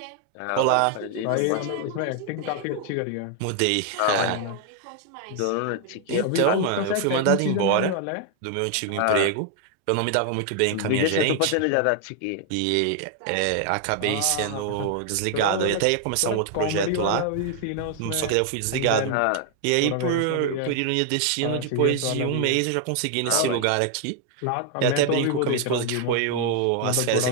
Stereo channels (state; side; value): different; both; correlation 0.00